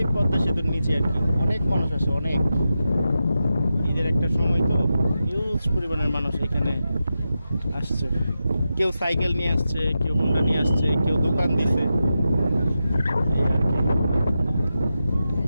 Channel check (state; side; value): inverted; both; correlation -0.90